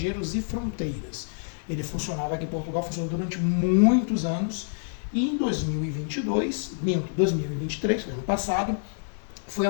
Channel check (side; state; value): right; silent; 60 dB below the other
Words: e Fronteiras. Ele funcionava aqui em Portugal, funcionou durante muitos anos, e em 2023, ano passado, foi